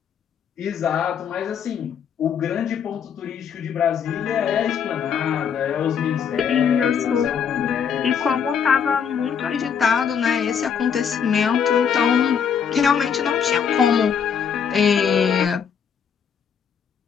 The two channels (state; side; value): quieter; right; 7.3 dB